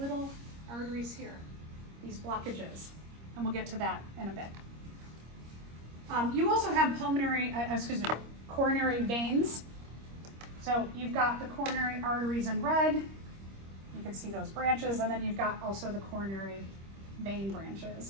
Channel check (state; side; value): late; left; 25 ms